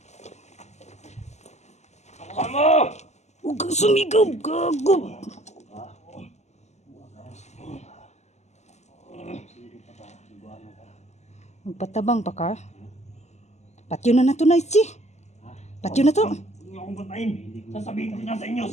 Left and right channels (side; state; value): right; late; 0.33 ms